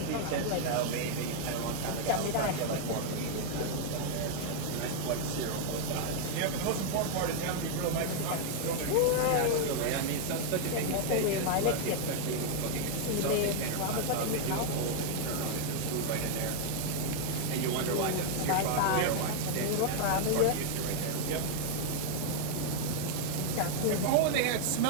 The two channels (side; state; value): both; different; correlation 0.00